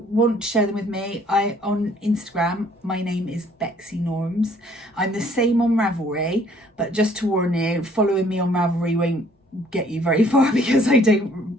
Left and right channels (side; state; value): both; normal; correlation 0.60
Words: want to share them with me, on Instagram, my name is Bexy Norms. I'm the same on Ravelry, but just to warn you, following me on Ravelry won't get you very far because I